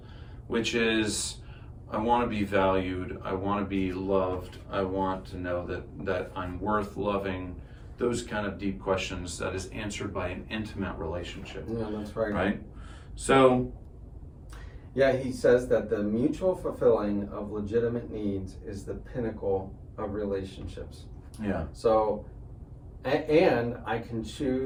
which is, I want to be valued, I want to be loved, I want to know that I'm worth loving. Those kind of deep questions that is answered by an intimate relationship. Yeah, that's right. Right? So, yeah, he says that the mutual fulfilling of legitimate needs is the pinnacle of relationships. yeah. So, and I can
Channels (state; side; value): identical; both; correlation 1.00